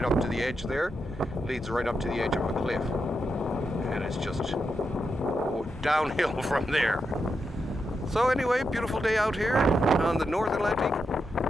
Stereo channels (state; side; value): normal; both; correlation 0.85